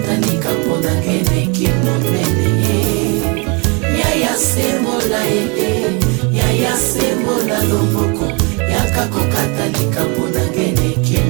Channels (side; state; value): left; quieter; 31.7 dB